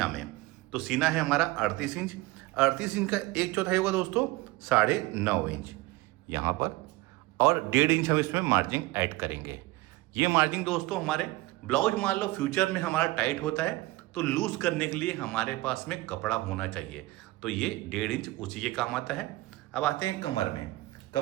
में। तो सीना है हमारा 38 इंच। 38 इंच का 1/4 होगा दोस्तों 9.5 इंच यहाँ पर, और 1.5 इंच हम इसमें मार्जिन ऐड करेंगे। ये मार्जिन दोस्तों हमारे ब्लाउज मान लो फ्यूचर में हमारा टाइट होता है तो लूज करने के लिए हमारे पास में कपड़ा होना चाहिए, तो ये 1.5 इंच उसी के काम आता है। अब आते हैं कमर में।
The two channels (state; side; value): quieter; left; 19.5 dB